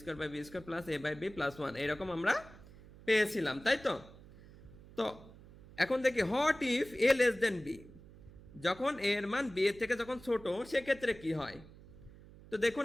by B square plus A by B plus 1 এরকম আমরা পেয়েছিলাম, তাই তো? তো এখন দেখি what if A less than B, যখন এর মান বি এর থেকে যখন ছোট সেক্ষেত্রে কি হয়। তো দেখুন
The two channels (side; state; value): right; noise; hum, 20 dB below the sound